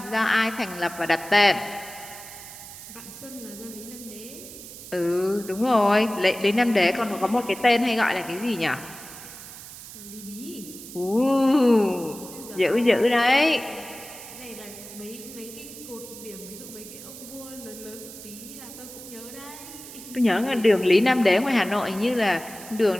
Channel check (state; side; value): noise; right; hiss, 14 dB below the sound